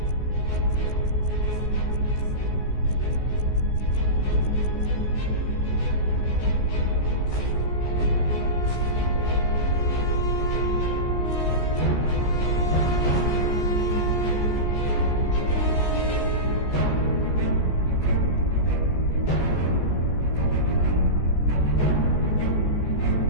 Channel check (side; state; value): right; late; 14 ms